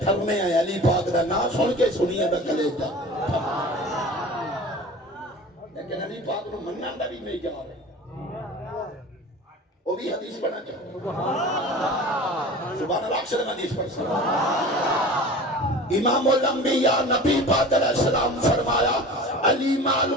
آئے علی پاک دا نا سن کے سنیے دا کلیجہ لیکن علی پاک نو منن دا بھی نہیں جا رہے وہ بھی حدیث پڑھنا چاہو سبحان اللہ اکثر حدیث پڑھ سکتا امام الانبیاء نبی پاک علیہ السلام فرمایا علی مال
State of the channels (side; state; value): both; normal; correlation 0.38